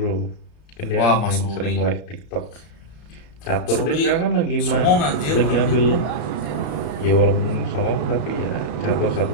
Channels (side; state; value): right; late; 34 ms